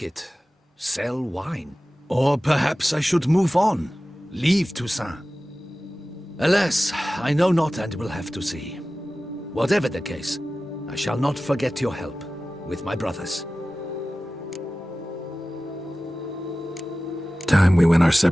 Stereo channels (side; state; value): both; normal; correlation 0.96